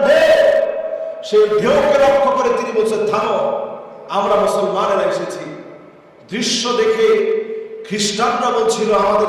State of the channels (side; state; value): both; identical; correlation 1.00